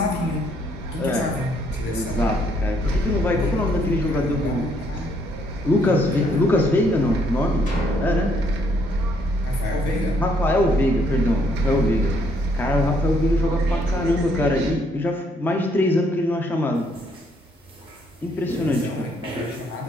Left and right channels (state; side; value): normal; both; correlation 0.69